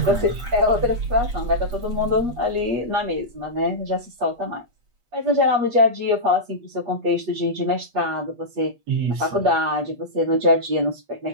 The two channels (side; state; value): left; late; 8.4 ms